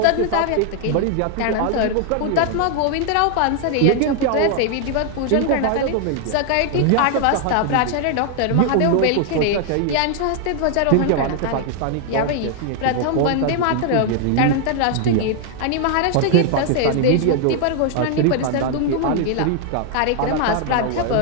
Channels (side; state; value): both; different; correlation 0.00